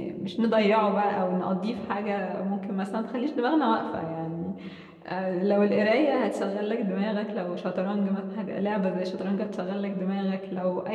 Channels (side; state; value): both; identical; correlation 1.00